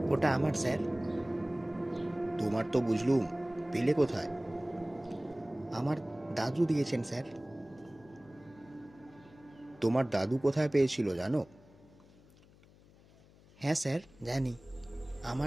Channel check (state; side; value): noise; left; hum, 25 dB below the sound